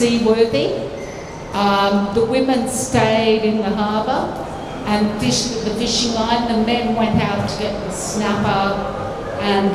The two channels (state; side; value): identical; both; correlation 1.00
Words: The women stayed in the harbour and fished with the fishing line. The men went out to get the snapper and